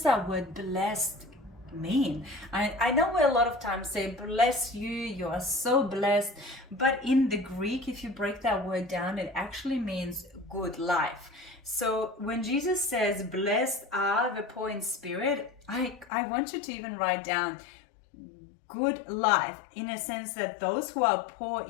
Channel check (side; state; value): right; drops out; at 16.1 s